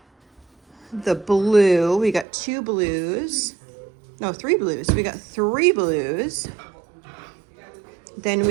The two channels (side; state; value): left; drops out; at 2.2 s